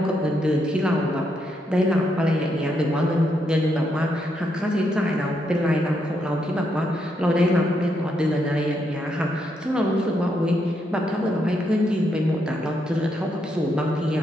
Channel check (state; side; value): normal; both; correlation 0.79